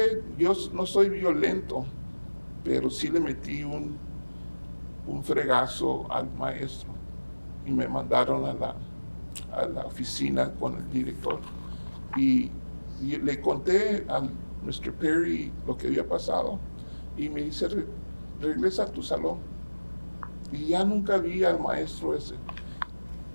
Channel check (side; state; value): both; inverted; correlation -1.00